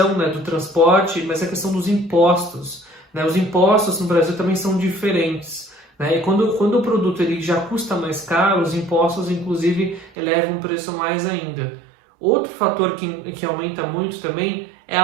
né, do transporte, mas a questão dos impostos, né? Os impostos no Brasil também são diferentes, né? E quando o produto ele já custa mais caro, os impostos inclusive elevam o preço mais ainda. Outro fator que aumenta muito também é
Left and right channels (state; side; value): drops out; left; at 10.1 s